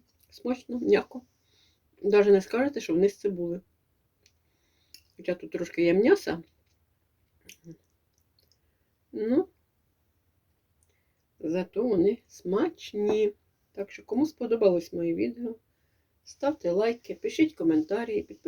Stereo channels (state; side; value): identical; both; correlation 1.00